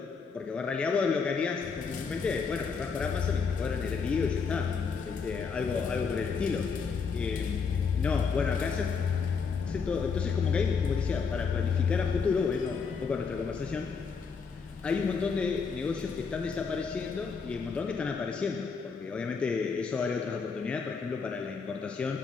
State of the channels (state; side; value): quieter; right; 5.5 dB